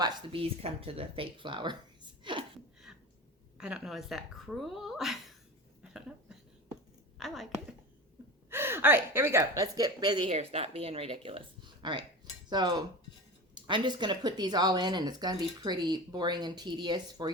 the bees come to the fake flowers. I don't know, is that cruel? I don't know. I like it. All right, here we go. Let's get busy here. Stop being ridiculous. All right, so I'm just going to put these all in, and it's going to be pretty boring and tedious for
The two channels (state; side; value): normal; both; correlation 0.29